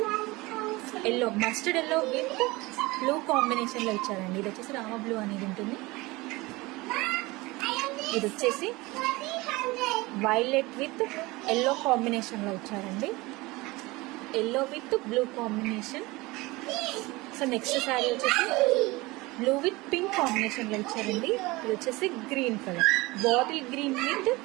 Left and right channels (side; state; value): left; quieter; 22.0 dB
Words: yellow, mustard yellow with blue combination లో ఇచ్చారండి. ఇది వచ్చేసి రామ బ్లూ అనేది ఉంటుంది. ఇది వచ్చేసి వైలెట్ విత్ ఎల్లో కాంబినేషన్ లో ఇచ్చారండి. Yellow with blue combination. So next sari వచ్చేసి బ్లూ విత్ పింక్ కాంబినేషన్ లో ఇచ్చారండి. ఇది వచ్చేసి green colour, bottle green with